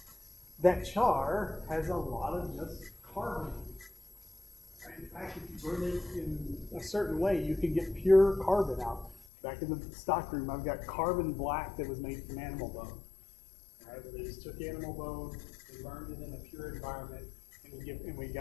has a lot of just carbon. In fact, if you burn it in a certain way, you can get pure carbon out. Back in the stockroom, I've got carbon black that was made from animal bone. All right, where they just took animal bone and burned it in a pure environment, and we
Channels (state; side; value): drops out; right; at 9.2 s